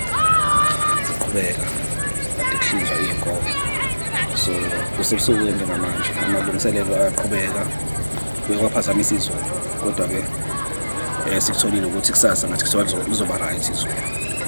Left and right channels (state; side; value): inverted; both; correlation -1.00